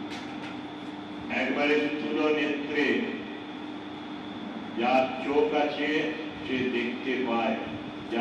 একবারে স্থূল নেত্রে যার চোখ আছে সে দেখতে পায়,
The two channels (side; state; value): both; identical; correlation 1.00